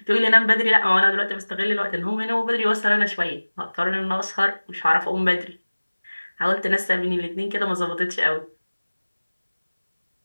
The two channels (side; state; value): both; inverted; correlation -1.00